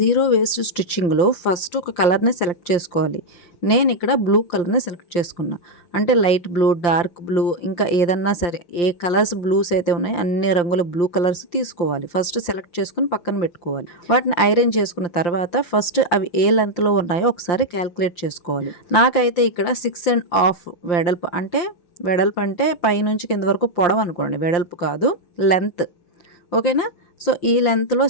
జీరో వేస్ట్ స్టిచ్చింగ్ లో ఫస్ట్ ఒక కలర్ ని సెలెక్ట్ చేసుకోవాలి. నేను ఇక్కడ బ్లూ కలర్ని సెలెక్ట్ చేసుకున్నా. అంటే లైట్ బ్లూ, డార్క్ బ్లూ, ఇంకా ఏదన్నా సరే ఏ కలర్స్ బ్లూస్ అయితే ఉన్నాయో అన్ని రంగుల బ్లూ కలర్స్ తీసుకోవాలి. ఫస్ట్ సెలెక్ట్ చేసుకుని పక్కన పెట్టుకోవాలి. వాటిని ఐరన్ చేసుకున్న తర్వాత ఫస్ట్ అవి ఏ లెంత్లో ఉన్నాయో ఒకసారి క్యాల్కులేట్ చేసుకోవాలి. నాకైతే ఇక్కడ 6.5 వెడల్పు అంటే పైనుంచి కింద వరకు పొడవు అనుకోండి, వెడల్పు కాదు, లెంత్. ఓకేనా? సో ఈ లెంత్లో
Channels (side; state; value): right; late; 5.8 ms